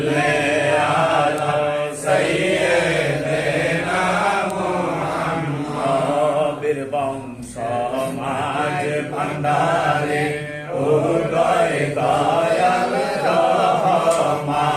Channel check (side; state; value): both; identical; correlation 1.00